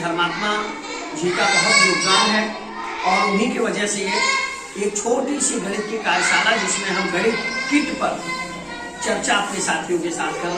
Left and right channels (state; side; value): identical; both; correlation 1.00